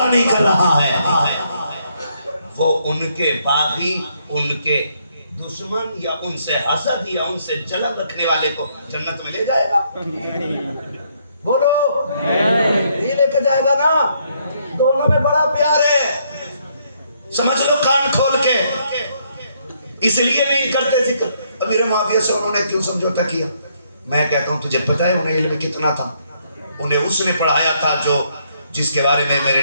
نہیں کر رہا ہے, وہ ان کے باغی, ان کے دشمن, یا ان سے حسد یا ان سے جلن رکھنے والے کو جنت میں لے جائے گا. بولو یہ لے کے جائے گا نا. دونوں میں بڑا پیار ہے, سمجھ لو کان کھول کے. اس لیے نہیں کرتے ذکر. امیر معاویہ سے انہوں نے کیوں سمجھوتا کیا؟ میں کہتا ہوں تجھے پتہ ہے انہیں علم کتنا تھا؟ انہیں اس نے پڑھایا تھا جو جس کے بارے میں میرے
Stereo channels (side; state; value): both; inverted; correlation -0.71